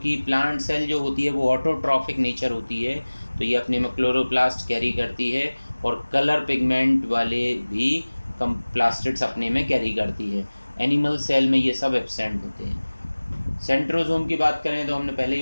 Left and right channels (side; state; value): both; inverted; correlation -1.00